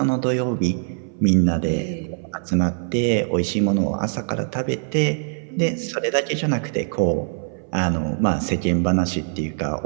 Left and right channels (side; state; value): left; silent; 59 dB below the other